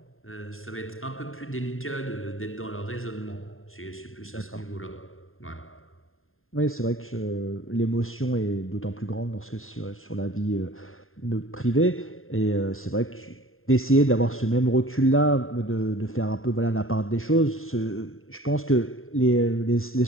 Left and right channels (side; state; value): right; late; 0.61 ms